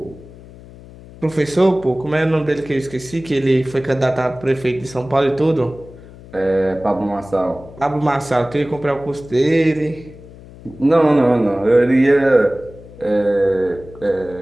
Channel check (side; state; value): left; noise; hum, 19 dB below the sound